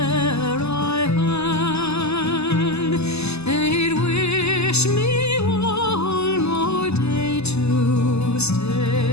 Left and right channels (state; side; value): late; right; 0.80 ms